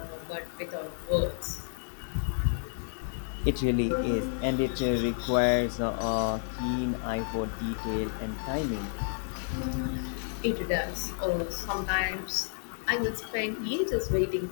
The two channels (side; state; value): right; silent; digital silence